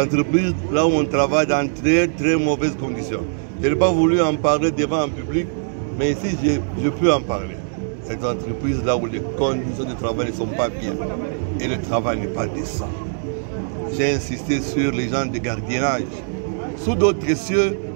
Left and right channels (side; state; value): left; silent; digital silence